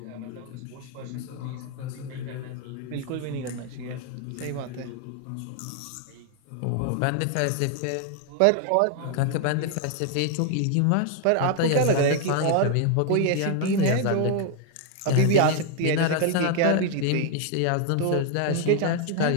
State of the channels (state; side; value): different; both; correlation 0.00